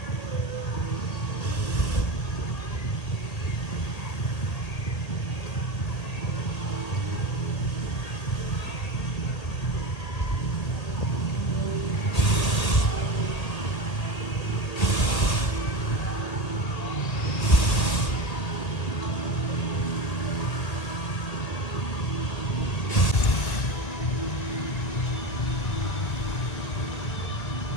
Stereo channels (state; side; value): late; right; 1.8 ms